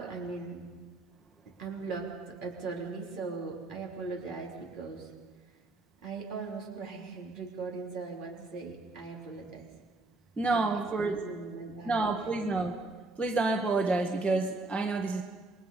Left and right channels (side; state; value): left; quieter; 3.1 dB